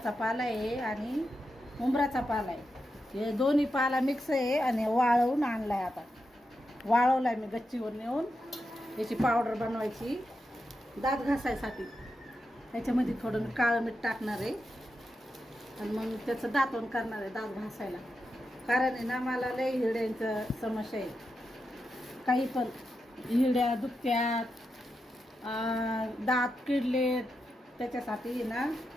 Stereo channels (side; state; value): both; normal; correlation 0.87